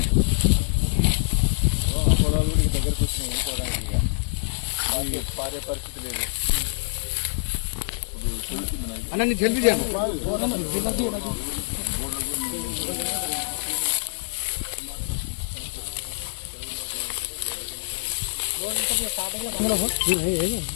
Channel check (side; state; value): right; silent; digital silence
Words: పొలాలు కూడా దగ్గరకు వచ్చినాయి పోవడానికి పారే పరిస్థితి లేదు. అన్న నీ జల్దీ చేయాలి.